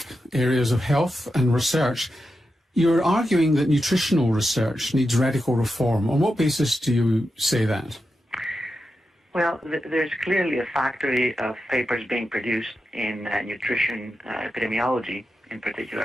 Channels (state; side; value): normal; both; correlation 0.89